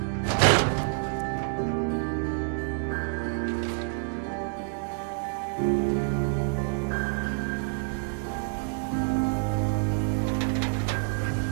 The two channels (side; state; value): left; silent; 59 dB below the other